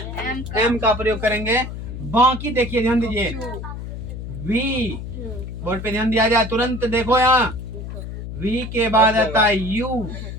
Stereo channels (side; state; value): left; noise; hum, 8 dB below the sound